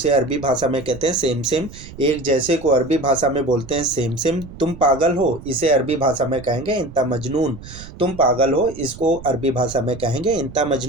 अरबी भाषा में कहते हैं सेम सेम। एक जैसे को अरबी भाषा में बोलते हैं सेम सेम। तुम पागल हो, इसे अरबी भाषा में कहेंगे इंता मजनून। तुम पागल हो, इसको अरबी भाषा में कहेंगे इंता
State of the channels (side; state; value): right; noise; rumble, 15 dB below the sound